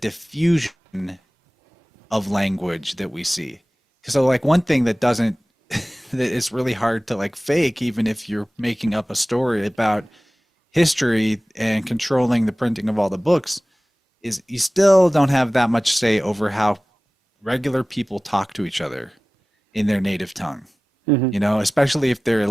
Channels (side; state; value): both; normal; correlation 0.98